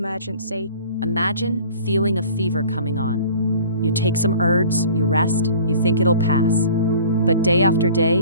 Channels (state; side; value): inverted; both; correlation -0.47